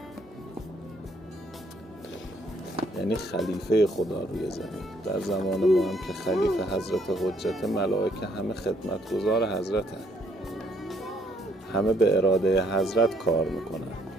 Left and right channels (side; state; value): both; normal; correlation 0.68